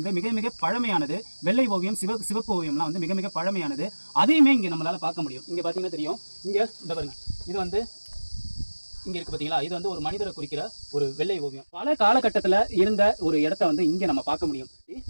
மிக மிக பழமையானது. வெள்ளை ஓவியம், சிவப்பு ஓவியம்லாம் வந்து மிக மிக பழமையானது. அதையுமே இங்க நம்மளால பார்க்க முடியும். இங்க பாத்தீங்கன்னா தெரியும், இங்க இந்த பாருங்க, இது வந்து இங்க இருக்கு பாத்தீங்களா, இது வந்து ஒரு மனிதரை குறிக்கிற ஒரு வெள்ளை ஓவியம். பல காலகட்டத்துல இருந்த ஒரு இடத்த வந்து இங்க நம்ம பார்க்க முடியும்.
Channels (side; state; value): both; inverted; correlation -1.00